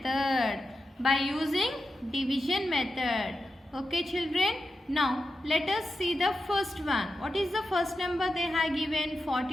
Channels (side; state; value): both; normal; correlation 0.89